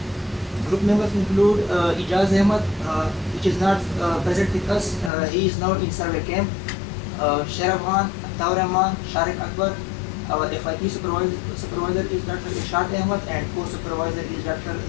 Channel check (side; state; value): right; drops out; at 5.1 s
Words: Group members include Ijaz Ahmed, which is not present with us. He is now in survey camp. Sharawan, Taur Rahman, Sharik Akbar. Our FIP supervisor is Dr. Ishaq Ahmed, and co-supervisor is Dr.